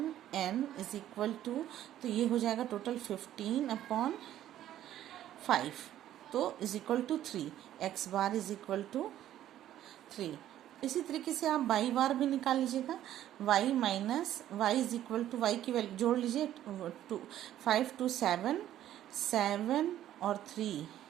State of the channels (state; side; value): quieter; left; 12.2 dB